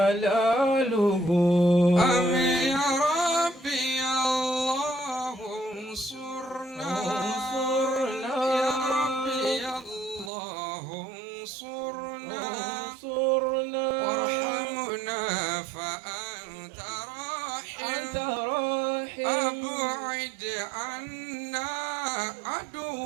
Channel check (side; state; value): left; drops out; at 10.3 s